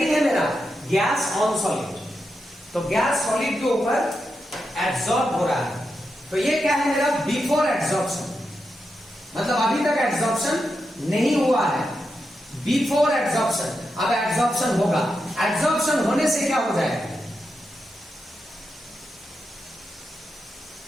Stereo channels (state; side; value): normal; both; correlation 0.87